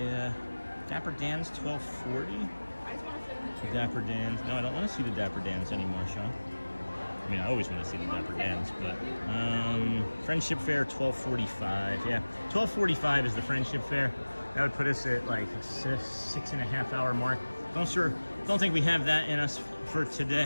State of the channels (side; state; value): both; inverted; correlation -1.00